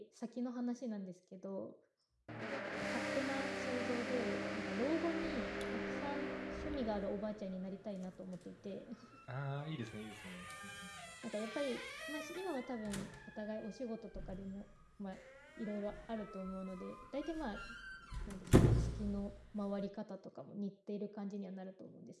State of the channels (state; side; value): identical; both; correlation 1.00